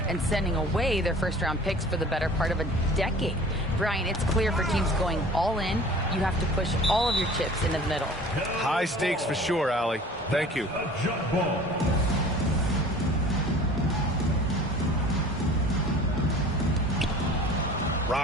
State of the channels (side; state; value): both; normal; correlation 0.45